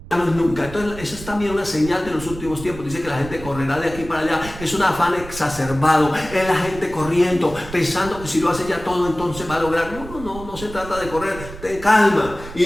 ya no es nunca. Entonces esa es también una señal de los últimos tiempos. Dice que la gente correrá de aquí para allá. Es un afán exacerbado, es la gente corriendo, pensando que si lo hace ya todo entonces va a lograr. No se trata de correr, ten calma. Y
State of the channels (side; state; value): right; noise; rumble, 13 dB below the sound